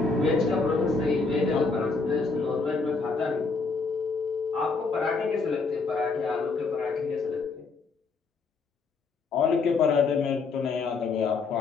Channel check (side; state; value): right; quieter; 4.4 dB